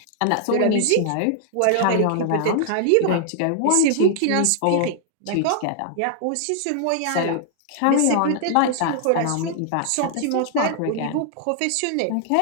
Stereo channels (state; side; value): different; both; correlation 0.00